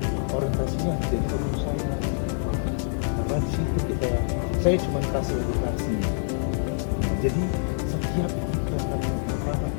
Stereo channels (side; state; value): right; silent; 61 dB below the other